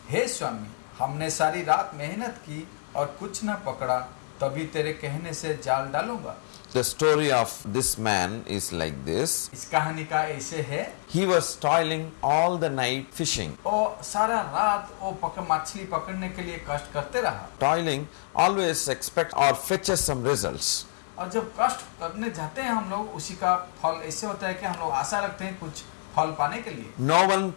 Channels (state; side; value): silent; right; digital silence